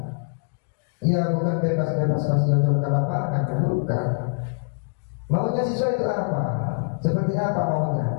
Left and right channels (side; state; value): right; silent; 60 dB below the other